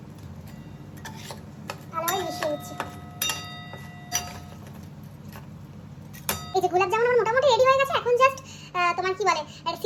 ভালোভাবে মিশিয়ে নিচ্ছি। এই যে গোলাপ জামুন আমার মোটামুটি রেডি হয়ে গেছে। এখন জাস্ট তোমার কি বলে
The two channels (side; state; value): both; identical; correlation 1.00